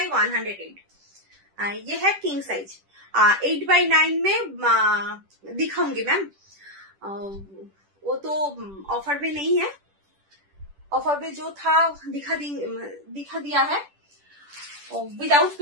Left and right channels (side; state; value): left; late; 10 ms